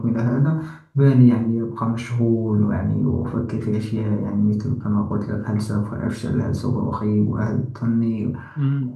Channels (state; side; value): identical; both; correlation 1.00